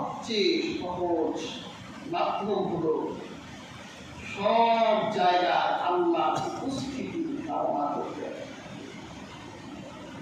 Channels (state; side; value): identical; both; correlation 1.00